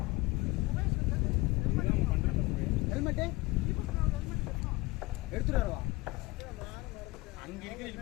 ஹெல்மெட்டு எடுத்துட்டு வருவா அங்கே இருக்கிற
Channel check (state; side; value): quieter; right; 21.1 dB